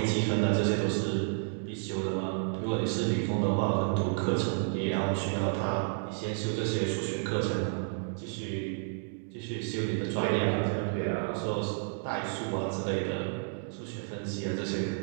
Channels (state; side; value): silent; left; digital silence